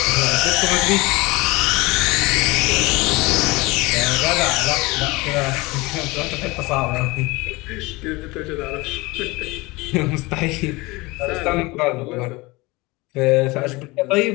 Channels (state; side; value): quieter; right; 23.1 dB